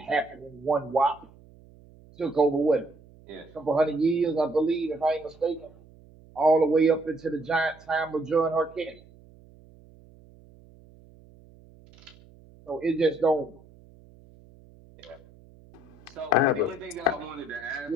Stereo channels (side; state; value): right; noise; hum, 25 dB below the sound